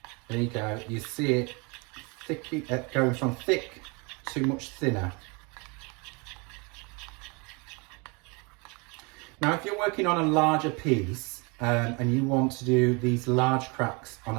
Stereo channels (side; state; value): left; quieter; 30.0 dB